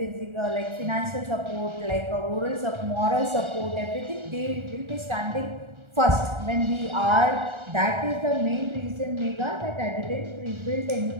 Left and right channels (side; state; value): left; late; 1.3 ms